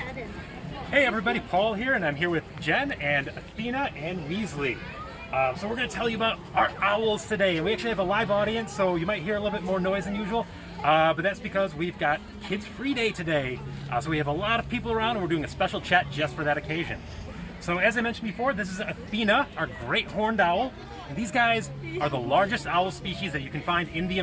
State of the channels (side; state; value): both; identical; correlation 1.00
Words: everybody, Paul here, and I'm here with Jen and Athena and Weasley. So we're going to tell you about our owls today, and we actually have a live audience, so you might hear a little bit more noise than usual, but that's because we've got Kids Free Day today. So we have a lot of people around, and we're doing a special chat just for that occasion. So as I mentioned before, this is Athena, our great horned owl. And these guys are the largest owl species that you can find in the